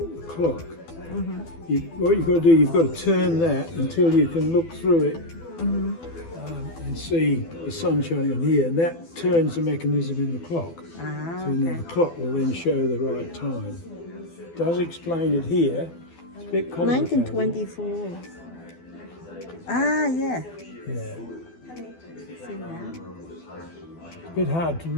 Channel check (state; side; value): late; right; 12 ms